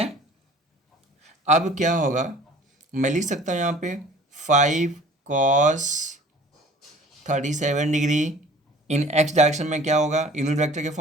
अब क्या होगा, मैं लिख सकता हूँ यहाँ पे 5 cos 37 degree in x direction में क्या होगा, यूनिट वेक्टर के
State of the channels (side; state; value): both; normal; correlation 0.48